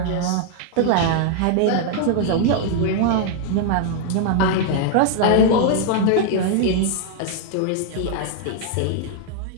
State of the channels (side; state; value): both; different; correlation -0.01